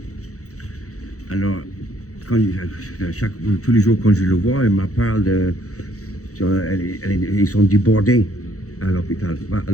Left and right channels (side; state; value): right; late; 0.65 ms